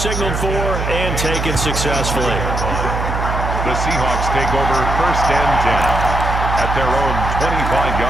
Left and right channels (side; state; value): right; noise; hum, 3 dB below the sound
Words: for and taken successfully. The Seahawks take over first and 10 at their own